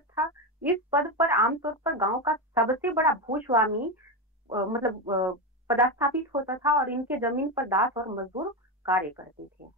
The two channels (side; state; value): both; normal; correlation 0.13